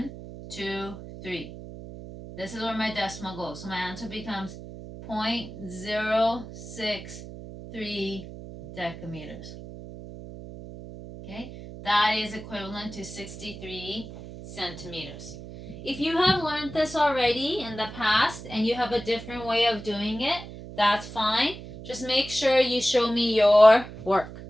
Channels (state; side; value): noise; right; hum, 13 dB below the sound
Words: 2, 3. This is where my decimal goes. So my answer becomes 0.063 decameters. Okay, that is equivalent to 63 centimeters. If you have learned this already in the past and you have a different way of doing it, that's fine. Just make sure you show me your work.